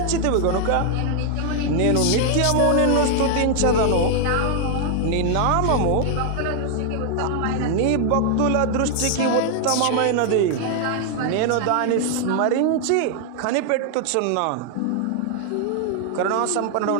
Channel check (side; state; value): both; different; correlation 0.00